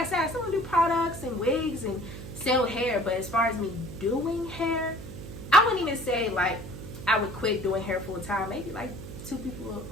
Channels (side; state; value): right; noise; hum, 11 dB below the sound